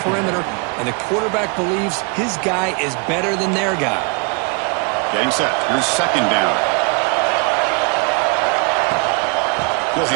And the quarterback believes his guy is better than their guy. Getting set. Here's 2nd down. He'll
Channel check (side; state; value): left; quieter; 35.6 dB